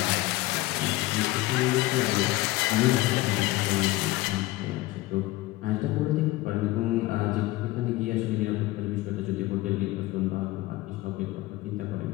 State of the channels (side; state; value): right; quieter; 18.6 dB